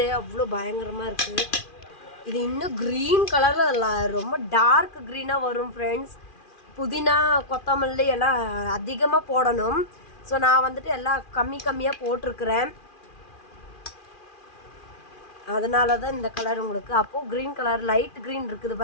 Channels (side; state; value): right; late; 2.4 ms